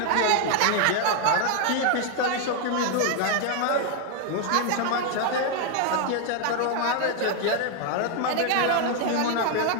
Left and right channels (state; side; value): different; both; correlation 0.00